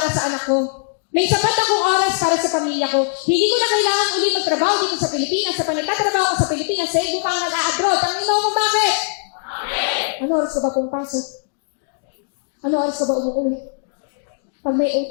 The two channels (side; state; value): right; silent; digital silence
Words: sa anak ko. May sapat akong oras para sa pamilya ko. Hindi ko na kailangan ulit magtrabaho dito sa Pilipinas. Sa panagtatrabaho ko sa Pilipinas, sa ko pang nag-a-abroad. Ang ino mo bakit? Ano oras ka ba pumapasok? Ano oras ka ba umuwi? Pag may OT